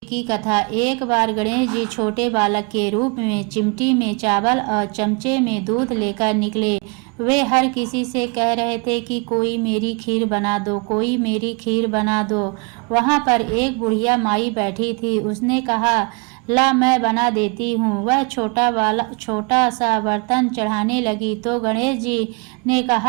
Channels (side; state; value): left; quieter; 32.4 dB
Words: की कथा। एक बार गणेश जी छोटे बालक के रूप में चिमटी में चावल और चमचे में दूध लेकर निकले। वे हर किसी से कह रहे थे कि कोई मेरी खीर बना दो, कोई मेरी खीर बना दो। वहाँ पर एक बुढ़िया माई बैठी थी। उसने कहा, ला मैं बना देती हूँ। वह छोटा सा बर्तन चढ़ाने लगी तो गणेश जी ने